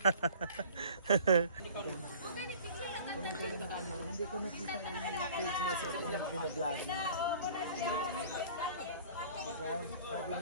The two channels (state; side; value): inverted; both; correlation -0.46